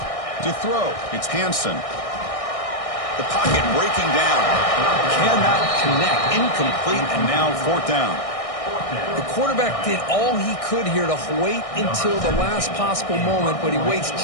To throw, it's Hansen. The pocket breaking down. Cannot connect. Incomplete, and now 4th down. The quarterback did all he could here to wait until the last possible moment, but he waits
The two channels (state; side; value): late; right; 1.6 ms